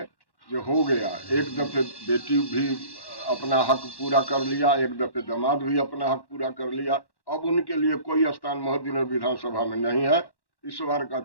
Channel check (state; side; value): late; right; 1.1 ms